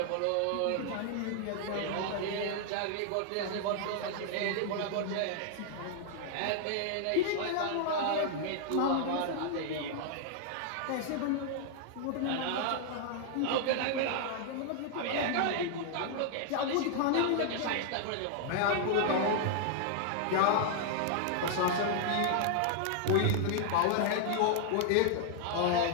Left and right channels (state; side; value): different; both; correlation 0.00